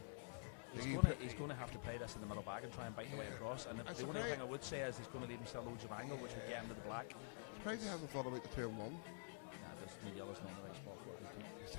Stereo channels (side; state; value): right; silent; digital silence